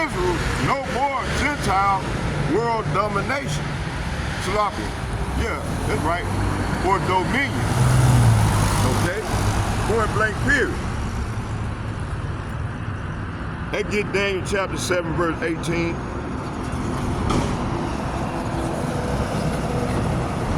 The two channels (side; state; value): both; identical; correlation 1.00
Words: no more Gentile world domination. Sloppy. Yeah, that's right. Or dominion. Okay? Point blank period. That get Daniel chapter 7, verse 18.